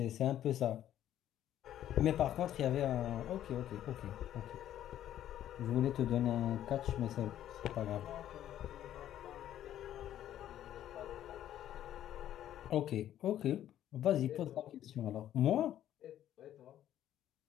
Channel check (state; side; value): quieter; right; 11.7 dB